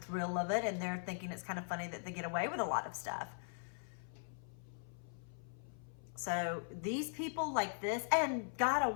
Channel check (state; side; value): silent; right; 51 dB below the other